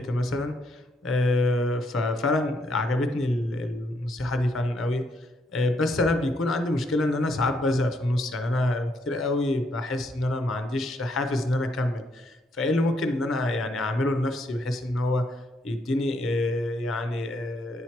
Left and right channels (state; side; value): normal; both; correlation 0.74